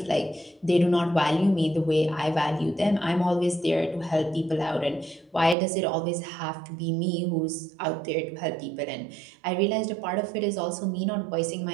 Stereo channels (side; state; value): left; drops out; at 5.6 s